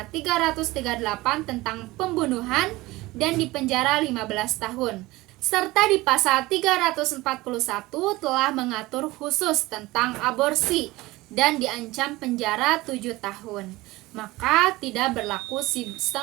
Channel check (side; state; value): left; quieter; 19.8 dB